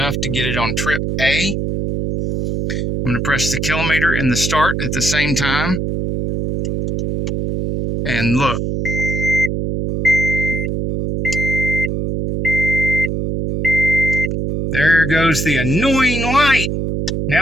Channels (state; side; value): noise; right; hum, 1 dB below the sound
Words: to get it on trip A. I'm going to press the kilometer and the start at the same time. And look. There goes the annoying light.